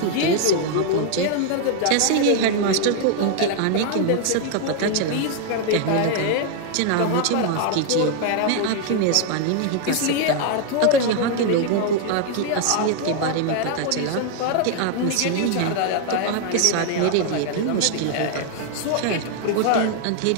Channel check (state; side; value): different; both; correlation 0.00